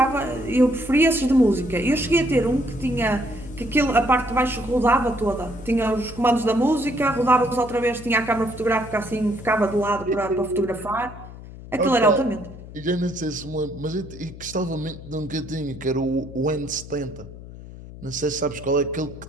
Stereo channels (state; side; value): noise; left; hum, 15 dB below the sound